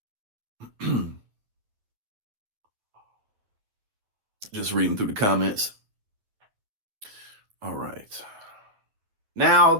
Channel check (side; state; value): left; late; 9.6 ms